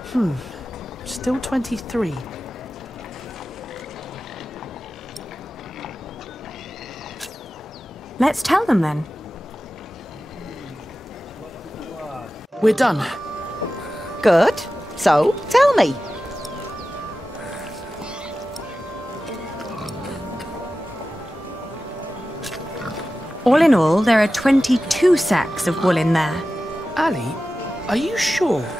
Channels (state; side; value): normal; both; correlation 0.94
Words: Still 23. Let's tell them then. We're done. Good. So, tell me. All in all, there are 22 sacks of wool in there. Ali, are you sure?